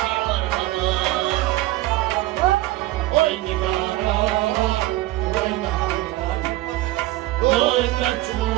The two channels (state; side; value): quieter; left; 17.1 dB